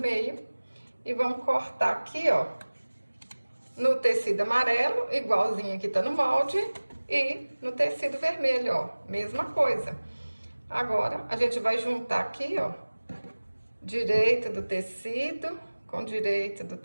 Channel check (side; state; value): both; inverted; correlation -1.00